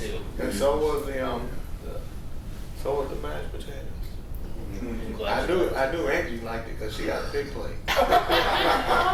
And so was the mashed potatoes. I knew Angie liked it because she got a big plate. We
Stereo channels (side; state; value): both; identical; correlation 1.00